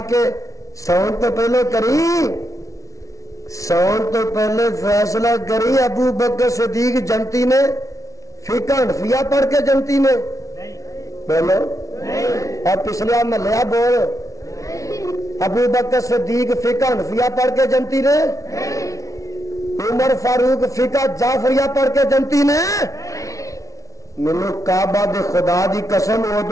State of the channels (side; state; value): right; late; 0.16 ms